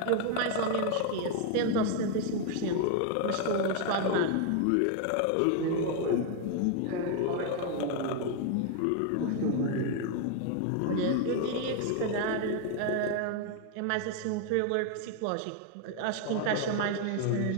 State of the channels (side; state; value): both; different; correlation 0.01